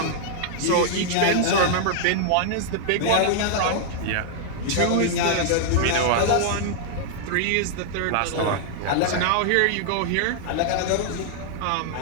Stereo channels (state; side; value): different; both; correlation -0.01